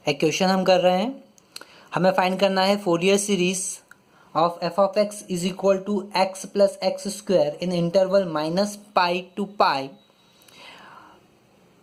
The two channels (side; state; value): both; identical; correlation 1.00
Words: एक question हम कर रहे हैं। हमें फाइंड करना है Fourier series of F of X is equal to X plus x square in interval minus pi to pi.